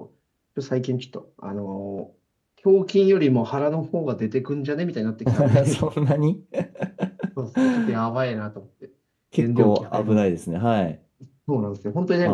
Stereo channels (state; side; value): identical; both; correlation 1.00